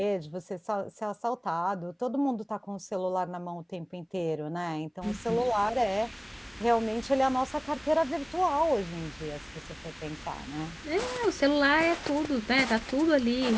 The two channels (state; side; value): identical; both; correlation 1.00